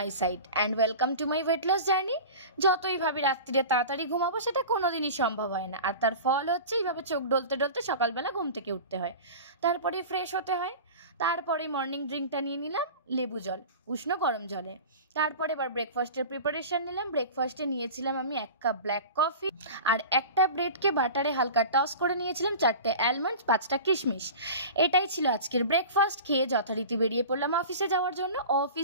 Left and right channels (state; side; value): inverted; both; correlation -0.35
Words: side and welcome to my weight loss journey. যতই ভাবি রাত্রিরে তাড়াতাড়ি ঘুমাবো সেটা কোনোদিনই সম্ভব হয় না, আর তার ফল হচ্ছে এইভাবে চোখ ডলতে ডলতে সকালবেলা ঘুম থেকে উঠতে হয়, তারপরে ফ্রেশ হতে হয়, তারপরে মর্নিং ড্রিঙ্কটা নিয়ে নিলাম লেবু জল উষ্ণ গরম জলে। তারপরে এবার ব্রেকফাস্টের প্রিপারেশন নিলাম। ব্রেকফাস্টে নিয়েছিলাম আমি 1 কাপ ব্ল্যাক কফি আর একটা ব্রেডকে বাটারে হালকা টস করে নিয়েছিলাম, 4টে অ্যালমন্ডস, 5টা কিশমিশ। এটাই ছিল আজকের ব্রেকফাস্ট। খেয়ে যথারীতি বেরিয়ে পড়লাম অফিসে যাওয়ার জন্য।